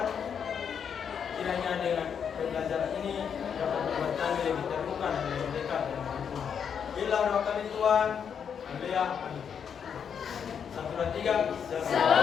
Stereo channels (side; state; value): right; quieter; 7.4 dB